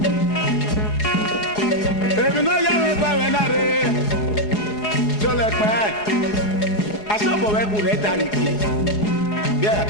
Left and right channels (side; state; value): right; late; 4.8 ms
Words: èmi náà yá mi pa mi náà rè tó lẹ pẹ́ asọ́bọ̀wẹ́ kù rẹ̀ darí kì bí